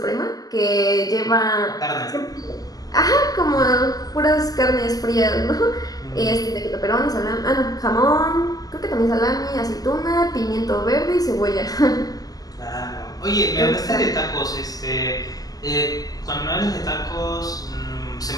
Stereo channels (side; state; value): right; late; 0.18 ms